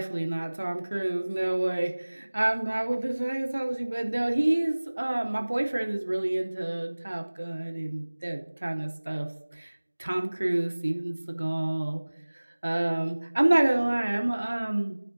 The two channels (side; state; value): both; inverted; correlation -1.00